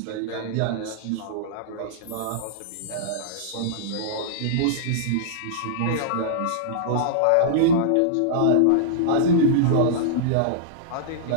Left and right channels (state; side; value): different; both; correlation -0.02